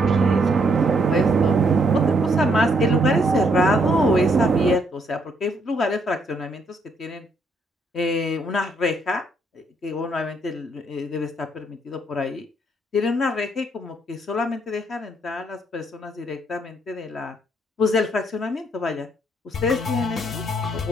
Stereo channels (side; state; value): both; normal; correlation 0.71